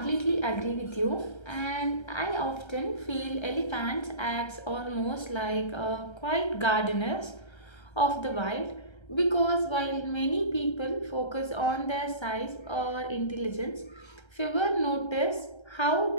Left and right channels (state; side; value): late; right; 1.3 ms